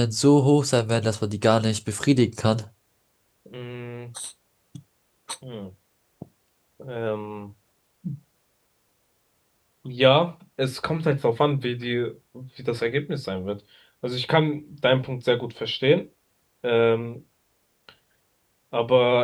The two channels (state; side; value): identical; both; correlation 1.00